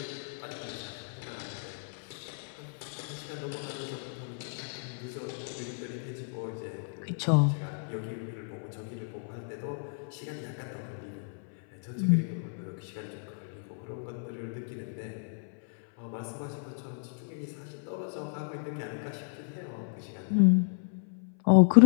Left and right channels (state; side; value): silent; right; 56 dB below the other